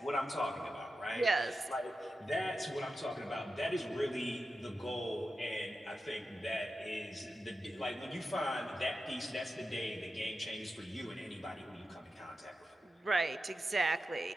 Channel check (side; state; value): both; normal; correlation 0.91